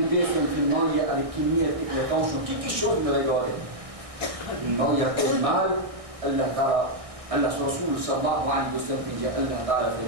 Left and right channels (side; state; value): left; late; 1.6 ms